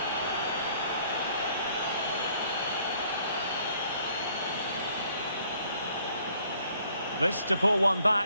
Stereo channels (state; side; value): inverted; both; correlation -0.63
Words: This to pull one